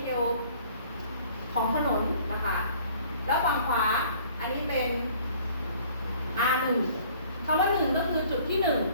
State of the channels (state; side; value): inverted; both; correlation -0.54